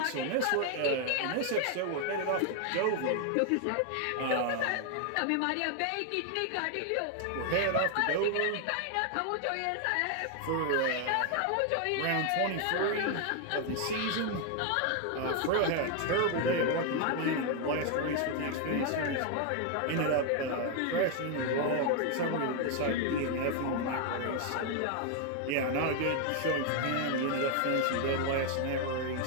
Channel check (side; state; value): both; different; correlation 0.00